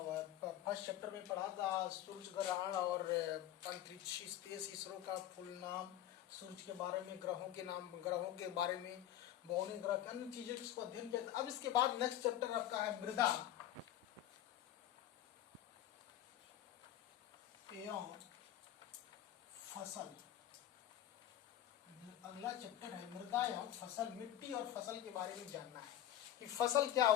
फर्स्ट चैप्टर में पढ़ा था सूर्य ग्रहण और अंतरिक्ष स्पेस, इसरो का फुल नाम, सूर्य के बारे में, ग्रहों के नाम, ग्रहों के बारे में, बौने ग्रह के अन्य चीजें इसको अध्ययन किया था। अब इसके बाद नेक्स्ट चैप्टर आपका है मृदा एवं फसल। अगला चैप्टर है मृदा एवं फसल, मिट्टी और फसल के बारे में जानना है कि फसल क्या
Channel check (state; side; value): quieter; right; 12.1 dB